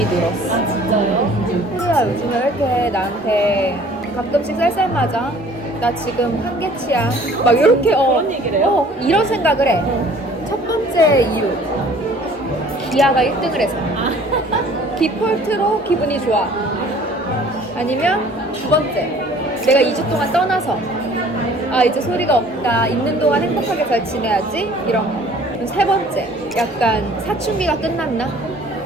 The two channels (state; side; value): normal; both; correlation 0.52